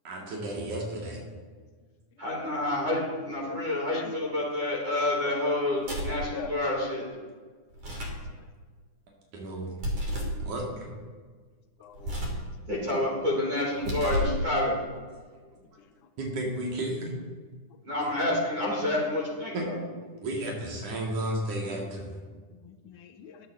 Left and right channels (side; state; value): left; late; 9.9 ms